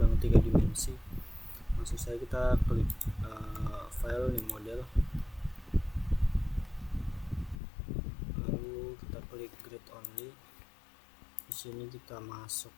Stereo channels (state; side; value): drops out; right; at 7.6 s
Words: 3 dimensi. Maksud saya, kita klik file new model, lalu kita klik grid only. Di sini kita